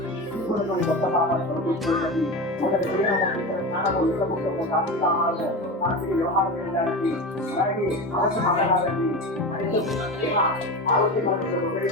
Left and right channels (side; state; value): both; normal; correlation 0.25